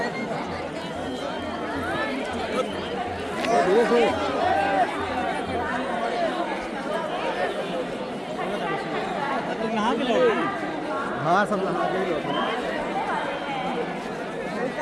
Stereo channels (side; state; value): both; identical; correlation 1.00